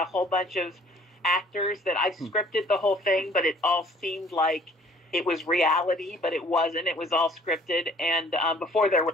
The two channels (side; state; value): both; normal; correlation 0.55